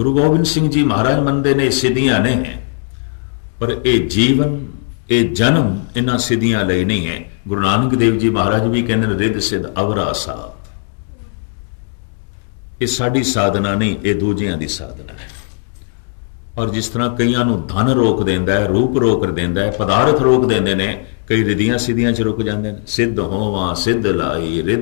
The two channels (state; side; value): silent; right; 68 dB below the other